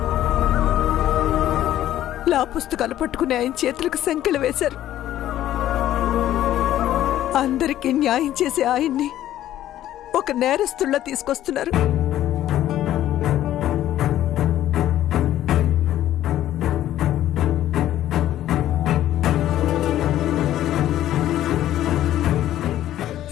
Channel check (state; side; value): quieter; right; 12.8 dB